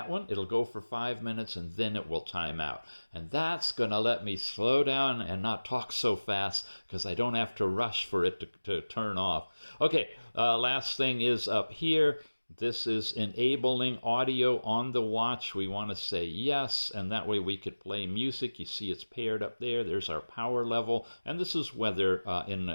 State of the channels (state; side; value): inverted; both; correlation -1.00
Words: one. It'll go for 5 minutes and then it will time out. And that's going to let me slow down and not talk so fast because I don't have to rush for it to turn off. Okay, last thing is up here. This is enabling audio on the watch. We want to say yes, and that way we could play music. You see it's paired up there. There's our power level, and this is weather in